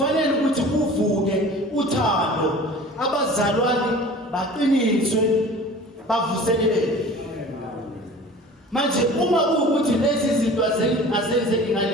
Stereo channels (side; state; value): both; normal; correlation 0.43